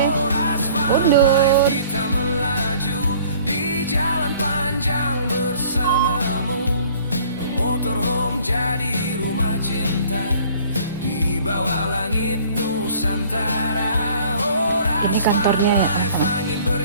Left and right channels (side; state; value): both; inverted; correlation -0.53